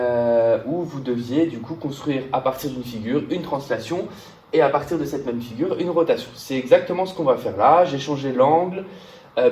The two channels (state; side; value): identical; both; correlation 1.00